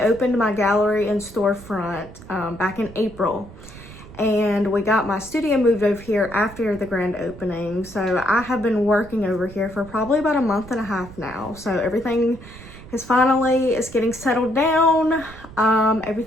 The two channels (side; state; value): right; noise; rumble, 17 dB below the sound